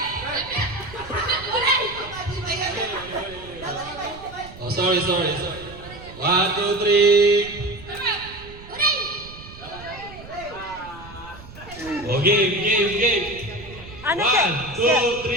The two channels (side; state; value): right; noise; rumble, 17 dB below the sound